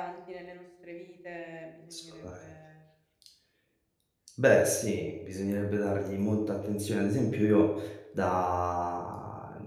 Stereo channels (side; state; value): both; identical; correlation 1.00